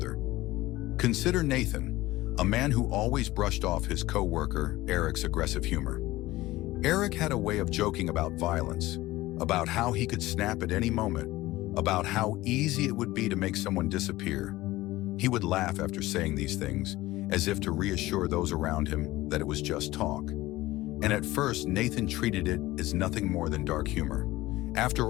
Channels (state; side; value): quieter; right; 17.9 dB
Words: Consider Nathan, a man who always brushed off his co-worker, Eric's aggressive humor. Eric had a way of joking about violence, about how he could snap at any moment, about how easy it would be to make someone disappear. He would laugh after saying these things, as if to reassure those around him that it was just talk. And at first, Nathan treated it as nothing more than dark humor.